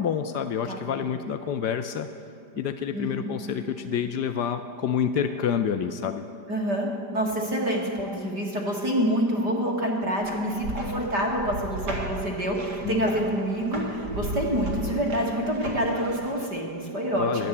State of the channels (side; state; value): left; late; 5.0 ms